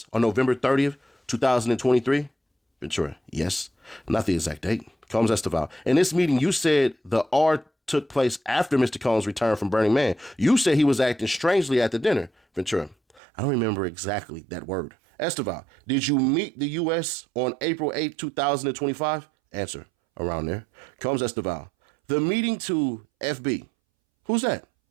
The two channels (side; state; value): left; drops out; at 13.2 s